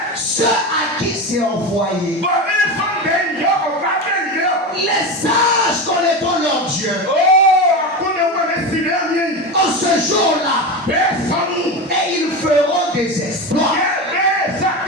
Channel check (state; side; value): normal; both; correlation 0.21